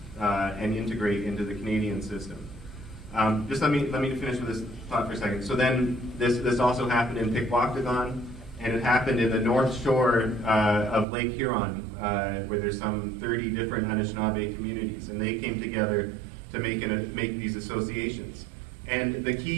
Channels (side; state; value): left; drops out; at 11.1 s